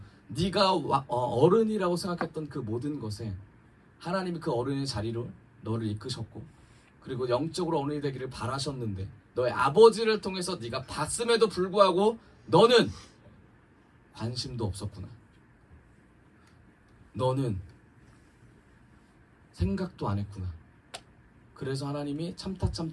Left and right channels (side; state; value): both; identical; correlation 1.00